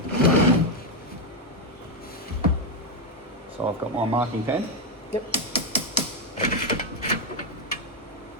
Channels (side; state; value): both; normal; correlation 0.05